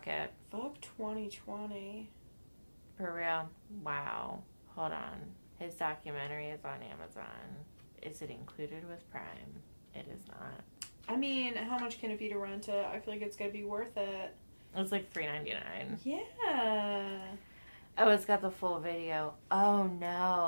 Fuck 2020. For real? Wow. Hold on. His documentary is on Amazon. Is it included with Prime? It is not. I mean, how much can it be to rent it? I feel like it's going to be worth it. It's like $3.99. Yeah. Oh, it's got the full video. Oh,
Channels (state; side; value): inverted; both; correlation -1.00